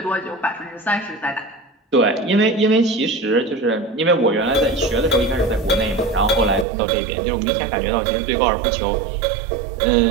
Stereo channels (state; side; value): drops out; left; at 6.7 s